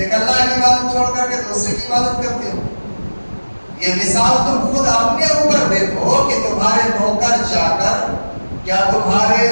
اللہ کی عبادت چھوڑ کر کے دوسرے کی عبادت کرتے ہو۔ یہ مثال تم خود اپنے اوپر دیکھو کہ تمہارے نوکر چاکر کیا تمہارے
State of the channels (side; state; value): both; inverted; correlation -1.00